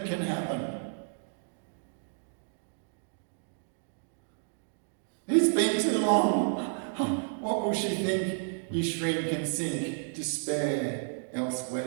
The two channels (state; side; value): silent; left; digital silence